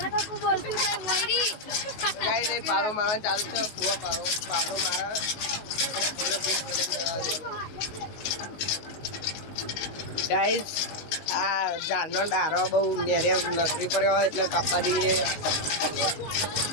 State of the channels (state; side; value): late; right; 19 ms